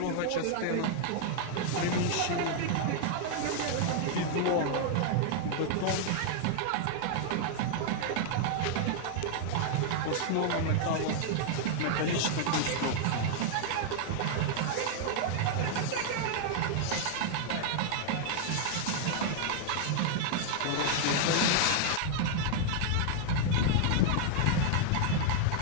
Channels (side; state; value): both; different; correlation 0.00